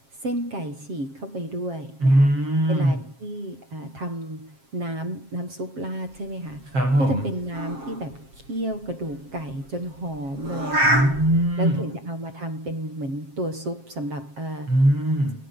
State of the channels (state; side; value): late; left; 7.4 ms